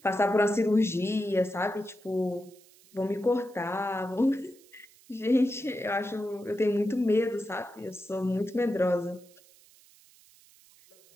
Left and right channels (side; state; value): right; noise; hiss, 27 dB below the sound